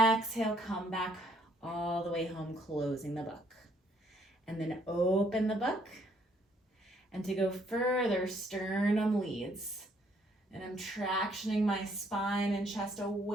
come back all the way home, closing the book. And then open the book. And to go further, sternum leads. And I'm tractioning my spine and chest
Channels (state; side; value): normal; both; correlation 0.67